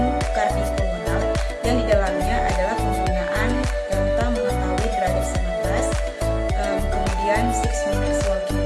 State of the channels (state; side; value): identical; both; correlation 1.00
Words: kardiofungal yang di dalamnya adalah penggunaan tentang mengetahui derajat nafas, kemudian 6 minutes walking